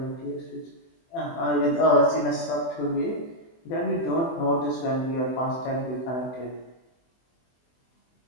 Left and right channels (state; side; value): late; right; 24 ms